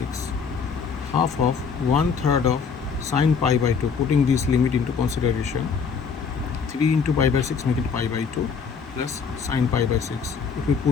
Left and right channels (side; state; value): right; quieter; 6.0 dB